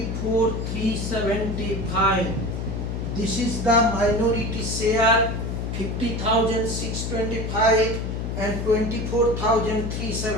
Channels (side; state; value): left; noise; hum, 3 dB below the sound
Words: This is the minority share 50,625 and